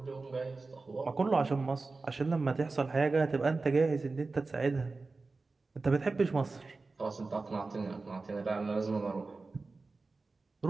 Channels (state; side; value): quieter; left; 3.8 dB